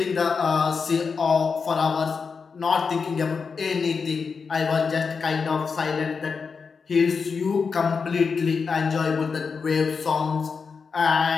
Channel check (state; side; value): quieter; right; 5.3 dB